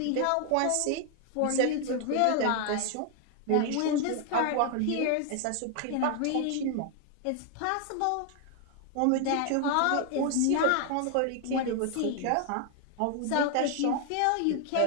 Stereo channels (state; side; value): different; both; correlation 0.00